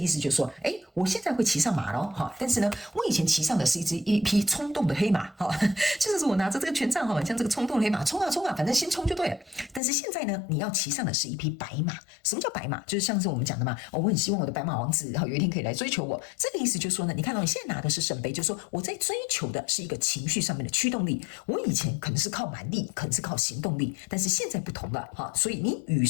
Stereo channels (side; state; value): right; drops out; at 9.8 s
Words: 思就是說，我現在會騎上馬了哈，但是呢，我以前騎上的是一匹衝動的黑馬。好，就是我拿着這個權杖哈，像這個衝動的黑馬，衝啊，反正先衝就對了。但是現在呢，你要騎上的是一匹白馬。什麼叫白馬？就是像是我們講的嘛，我很希望我的白馬王子有一天可以來追求我。這個意思就是說呢，你看到你現在拿的是聖杯，就是說我在追求的是一個情緒上面的驅動力。我以前可能是靠蠻力，可能是靠行動力，但是現在不同了哈。所以你與